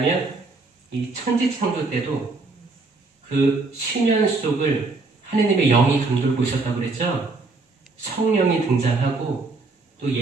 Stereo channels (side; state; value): left; quieter; 3.7 dB